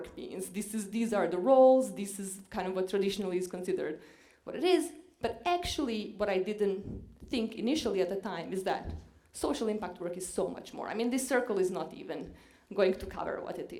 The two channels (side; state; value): both; identical; correlation 1.00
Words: means. These are the roles, this is kind of what traditionally is considered what it is, but actually what I didn't think initially at the time is that social impact work is so much more. I mean, this circle is not even going to cover what it